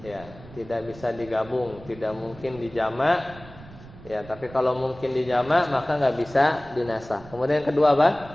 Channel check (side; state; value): right; noise; rumble, 19 dB below the sound